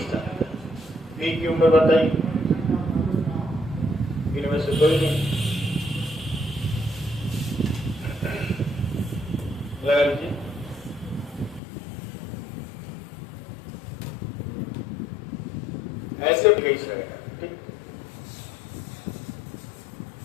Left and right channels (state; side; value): drops out; right; at 11.6 s